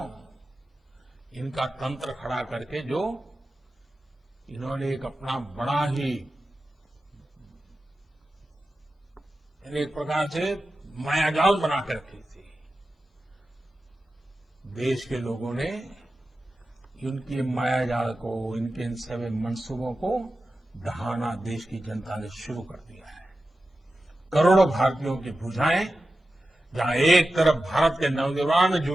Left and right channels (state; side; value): normal; both; correlation 0.93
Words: इनका तंत्र खड़ा करके जो इन्होंने एक अपना बड़ा ही एक प्रकार से मायाजाल बना कर रखी थी। देश के लोगों ने इनकी मायाजाल को, इनके इन सभी मंसूबों को दहाना देश की जनता ने शुरू कर दिया है। करोड़ों भारतीयों की भुजाएं जहां एक तरफ भारत के नवनिर्माण में